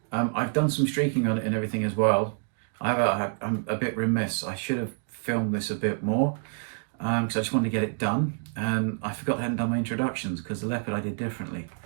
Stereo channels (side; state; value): left; silent; digital silence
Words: I've done some streaking on it and everything as well. I'm a bit remiss. I should have filmed this a bit more because I just wanted to get it done, and I forgot I hadn't done my introductions because the leopard I did differently.